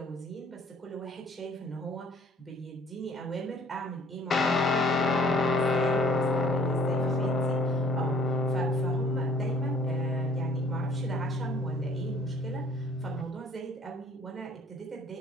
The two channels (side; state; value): both; normal; correlation 0.56